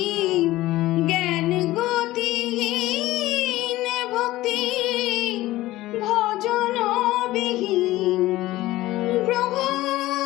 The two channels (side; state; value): right; quieter; 17.0 dB